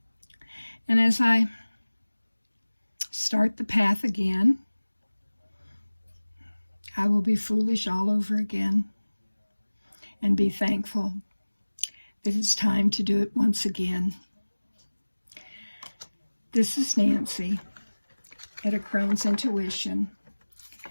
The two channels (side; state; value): both; inverted; correlation -1.00